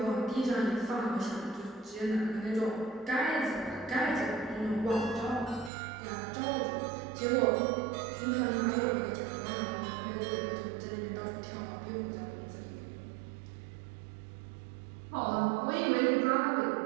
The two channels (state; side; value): drops out; left; at 5.7 s